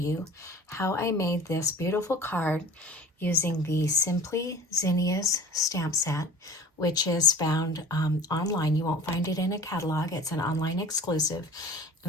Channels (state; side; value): normal; both; correlation 0.43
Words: how I made this beautiful card using the Simply Zinnia's stamp set, which is found online. You won't find it in a catalog. It's an online exclusive,